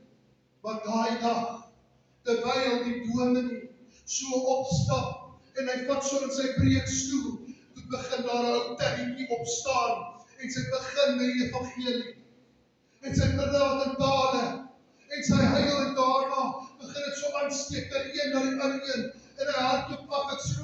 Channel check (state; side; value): identical; both; correlation 1.00